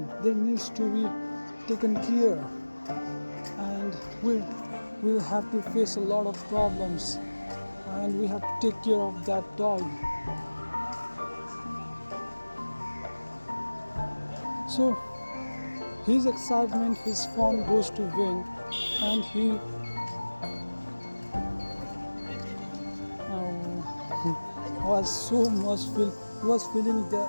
they needs to be taken care, and we will have to face a lot of problems, and we have to take care of that dog. So his excitement, his fun goes to vain, and he was feeling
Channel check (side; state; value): both; inverted; correlation -1.00